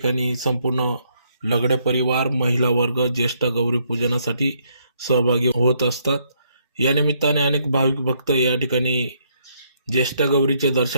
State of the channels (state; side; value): inverted; both; correlation -0.72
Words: संपूर्ण लगडे परिवार, महिला वर्ग ज्येष्ठ गौरी पूजनासाठी सहभागी होत असतात. या निमित्ताने अनेक भाविक भक्त या ठिकाणी ज्येष्ठ गौरीचे